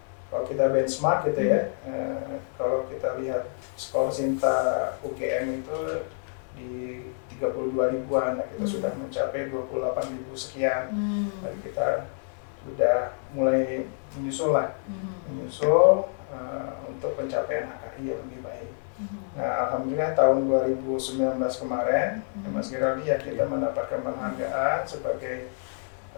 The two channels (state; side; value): silent; right; 60 dB below the other